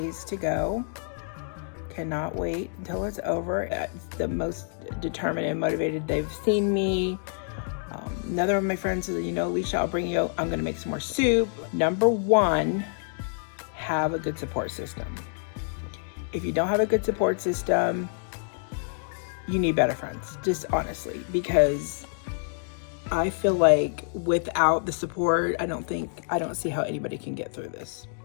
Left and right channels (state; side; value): silent; right; digital silence